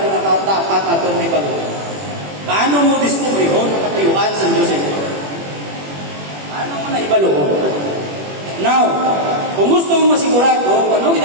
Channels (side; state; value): left; late; 21 ms